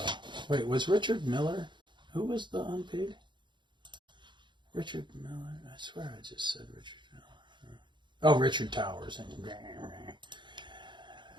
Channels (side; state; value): left; late; 0.23 ms